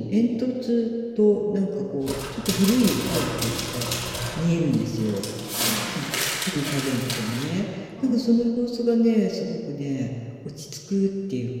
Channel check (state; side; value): identical; both; correlation 1.00